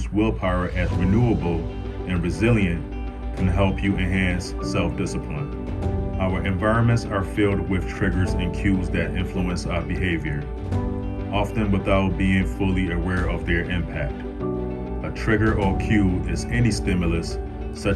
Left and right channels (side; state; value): both; identical; correlation 1.00